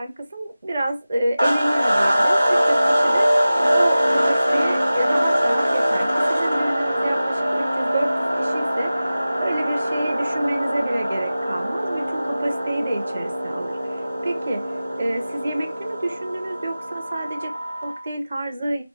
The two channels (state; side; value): inverted; both; correlation -0.96